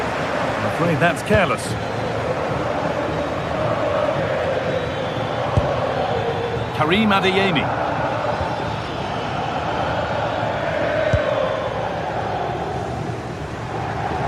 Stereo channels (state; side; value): identical; both; correlation 1.00